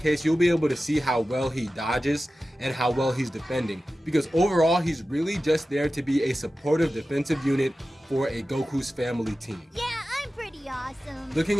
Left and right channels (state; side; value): normal; both; correlation 0.94